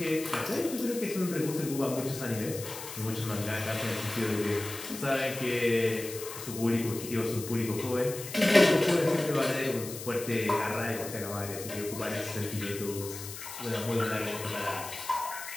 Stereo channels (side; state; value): left; noise; hiss, 10 dB below the sound